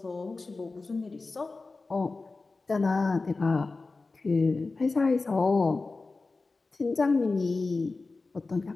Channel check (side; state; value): right; quieter; 3.7 dB